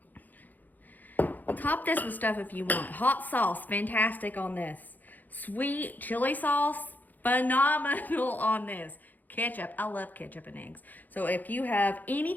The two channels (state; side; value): late; right; 0.084 ms